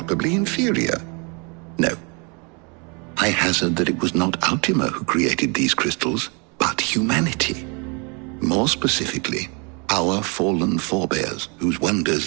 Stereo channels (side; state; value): left; quieter; 33.1 dB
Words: inferior? No. I hazard that it was not Ultima who created these crystals, but humanity. More specifically, our fallen forebears, whose